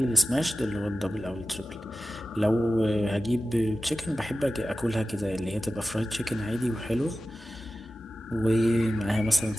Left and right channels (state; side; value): normal; both; correlation 0.95